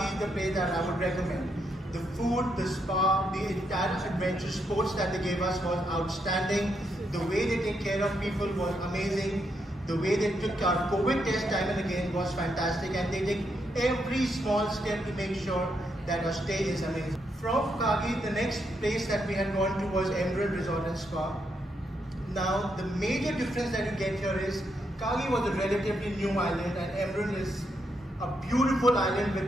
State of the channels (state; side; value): normal; both; correlation 0.79